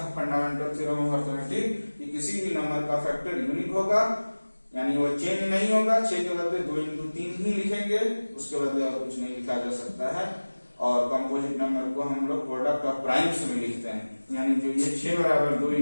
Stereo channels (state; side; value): inverted; both; correlation -1.00